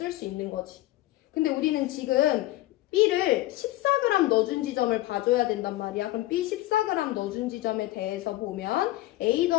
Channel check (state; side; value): quieter; right; 16.8 dB